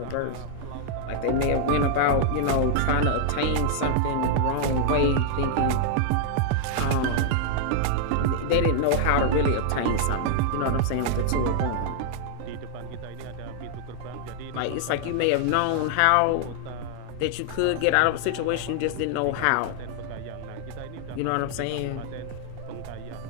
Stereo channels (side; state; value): both; different; correlation 0.00